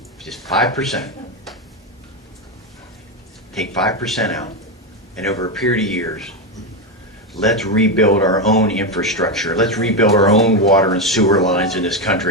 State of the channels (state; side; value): normal; both; correlation 0.11